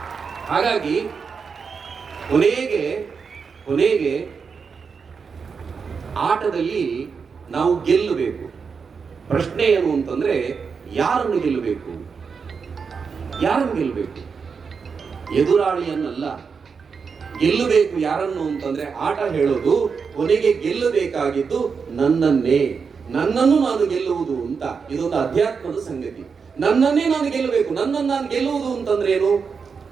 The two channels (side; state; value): left; quieter; 5.7 dB